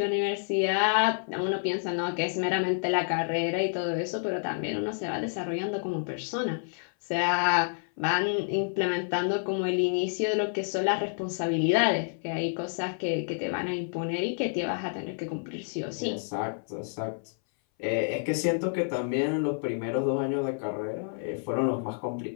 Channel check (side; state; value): right; silent; 59 dB below the other